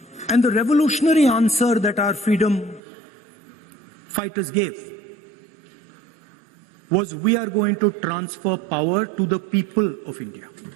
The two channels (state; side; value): drops out; left; at 2.8 s